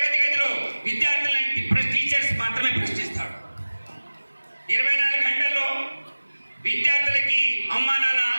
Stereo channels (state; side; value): inverted; both; correlation -1.00